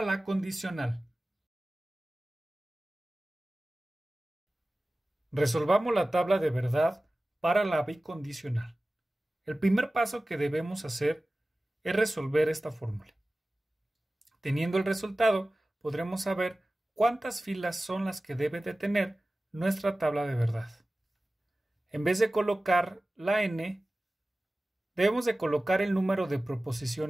la condicional. Resolvamos la tabla de verdad para la bicondicional. El primer paso que debemos hacer es resolver esta fórmula. Teniendo el resultado, podremos saber cuántas filas son las que debe de tener nuestra tabla de verdad. En vez de colocar la n, debemos de colocar el número de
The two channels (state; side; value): normal; both; correlation 0.97